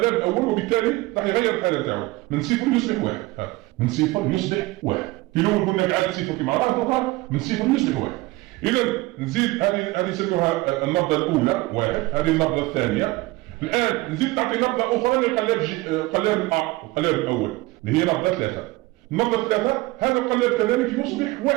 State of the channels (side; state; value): left; quieter; 20.5 dB